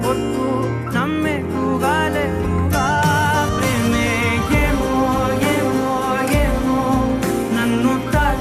పొట్టు నమ్మేట్టుగా లేటుగా ప్రేమే ఏమో ఏమో ఏమో నన్ను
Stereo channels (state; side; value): identical; both; correlation 1.00